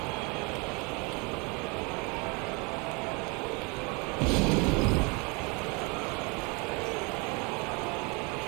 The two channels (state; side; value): quieter; left; 30.3 dB